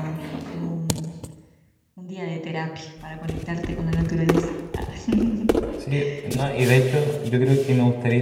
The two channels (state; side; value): identical; both; correlation 1.00